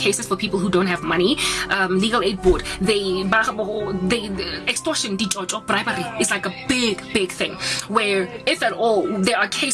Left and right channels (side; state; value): both; identical; correlation 1.00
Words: for people who don't have money, legal aid board. They extortion, bribery is like a big thing. Where if at all there are